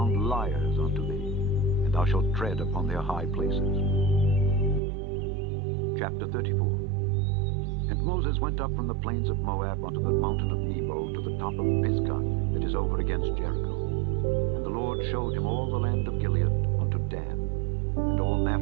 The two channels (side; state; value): left; drops out; at 4.8 s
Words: liars unto thee, and thou shalt tread upon their high places. Chapter 34. And Moses went up from the plains of Moab unto the mountain of Nebo to the top of Pisgah that is over against Jericho. And the Lord showed him all the land of Gilead unto Dan, and all